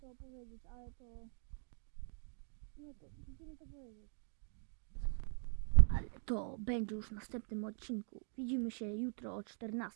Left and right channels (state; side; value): silent; left; 50 dB below the other